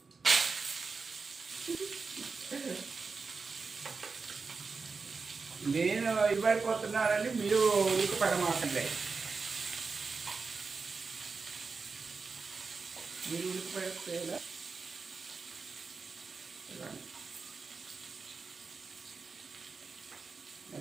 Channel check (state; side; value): quieter; left; 4.6 dB